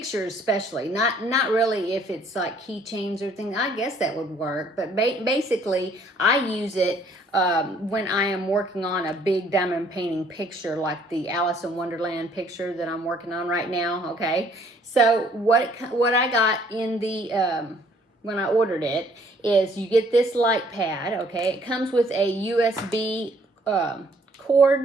especially. Not really if it's like keychains or things. I guess that would work, but basically I use it when I am working on a big diamond painting picture, like the Alice in Wonderland picture that I'm working on right now. Okay, so what I got in the when I ordered it is you get this light pad. Okay, it comes with a USB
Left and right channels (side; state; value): both; normal; correlation 0.62